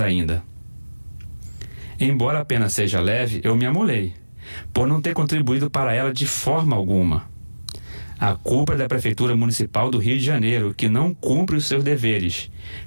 Embora a pena seja leve, eu me amolei, por não ter contribuído para ela de forma alguma. A culpa é da Prefeitura Municipal do Rio de Janeiro, que não cumpre os seus deveres,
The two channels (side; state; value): both; inverted; correlation -1.00